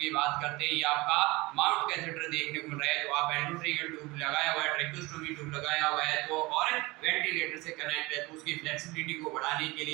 की बात करते हैं, ये आपका माउंट कैथेटर देखने को मिल रहा है, तो आप एंडोट्रिकल ट्यूब लगाया हुआ है, ट्रैकोस्टोमी ट्यूब लगाया हुआ है, तो और वेंटिलेटर से कनेक्ट है, तो उसकी फ्लेक्सिबिलिटी को बढ़ाने के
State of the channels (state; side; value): quieter; left; 22.6 dB